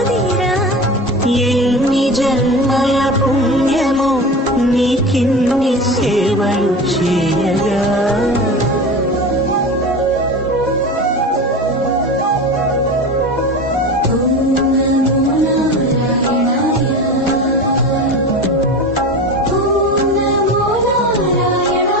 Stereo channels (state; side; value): normal; both; correlation 0.30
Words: ఎన్ని జన్మల పుణ్యము నీకిన్ని సేవలు చేయగా